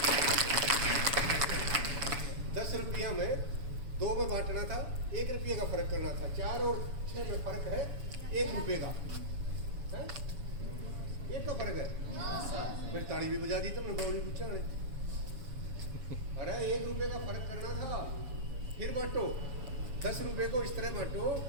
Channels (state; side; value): late; left; 7.1 ms